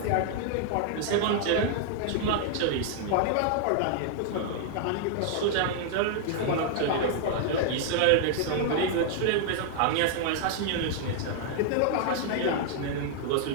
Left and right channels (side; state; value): both; different; correlation -0.01